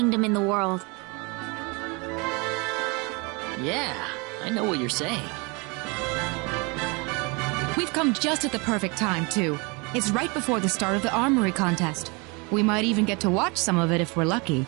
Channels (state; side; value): quieter; left; 29.3 dB